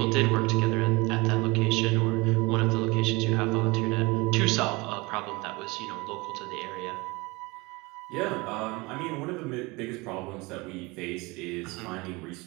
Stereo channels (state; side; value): quieter; left; 24.4 dB